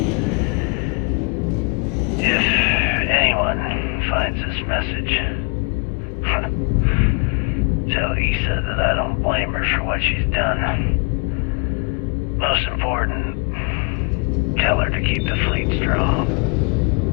If anyone finds this message, tell Issa that I don't blame her for what she's done. Most important, tell her to keep the fleet strong.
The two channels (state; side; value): quieter; right; 35.0 dB